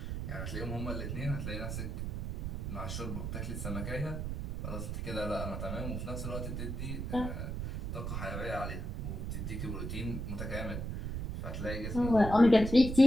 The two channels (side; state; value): right; noise; rumble, 3 dB below the sound